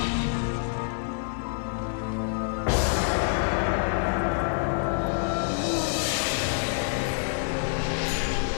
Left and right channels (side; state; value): right; silent; 60 dB below the other